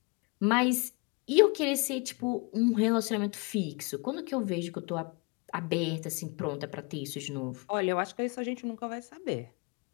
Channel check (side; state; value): right; quieter; 30.2 dB